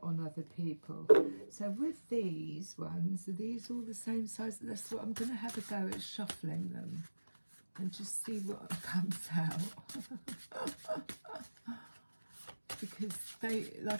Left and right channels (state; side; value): inverted; both; correlation -1.00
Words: on other people. So with these ones, are these all the same size? That's what I'm going to have a go at, shuffling them and just see what comes out. Because they,